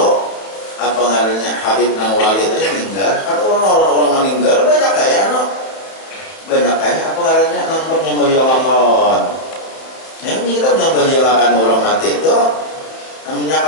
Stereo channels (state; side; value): late; right; 31 ms